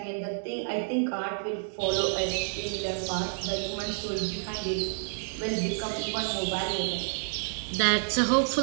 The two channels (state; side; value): silent; left; digital silence